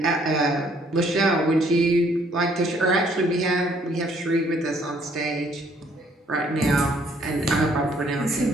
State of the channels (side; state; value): both; normal; correlation 0.64